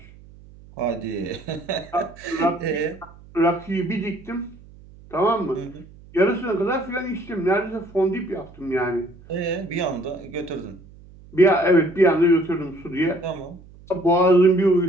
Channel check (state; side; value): noise; right; hum, 22 dB below the sound